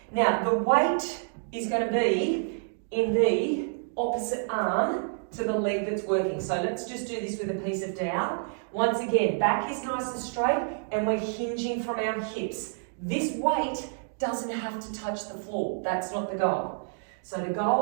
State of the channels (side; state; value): left; silent; digital silence